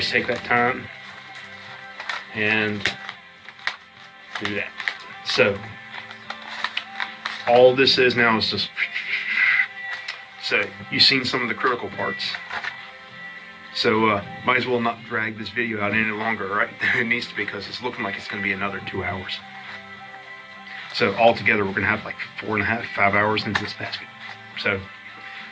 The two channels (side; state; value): both; identical; correlation 1.00